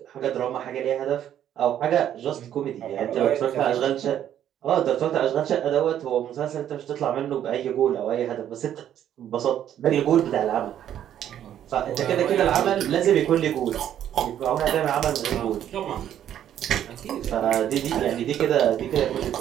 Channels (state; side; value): quieter; left; 10.6 dB